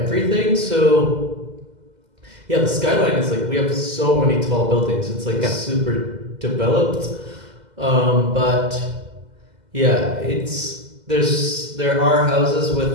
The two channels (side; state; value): left; late; 2.0 ms